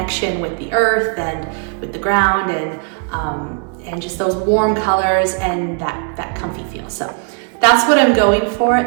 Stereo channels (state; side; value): quieter; left; 39.6 dB